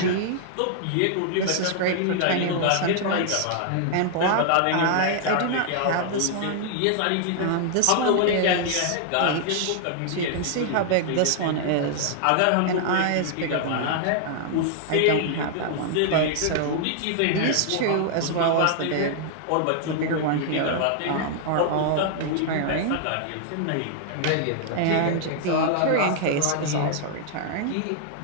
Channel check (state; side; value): different; both; correlation -0.01